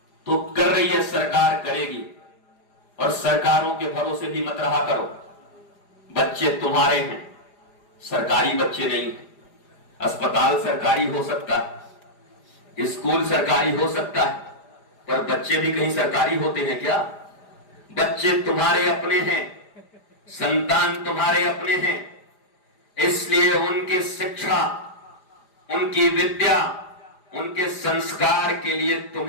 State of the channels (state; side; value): late; right; 4.9 ms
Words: तो कर रही है सरकार, करेगी, और सरकारों के भरोसे भी मत रहा करो। बच्चे तुम्हारे हैं, सरकारी बच्चे नहीं हैं। अस्पताल सरकारी हो सकता है, स्कूल सरकारी हो सकता है, पर बच्चे भी कहीं सरकारी होते हैं क्या? बच्चे तुम्हारे अपने हैं, संतान तुम्हारे अपने हैं, इसलिए उनकी शिक्षा, उनकी विद्या, उनके संस्कार के लिए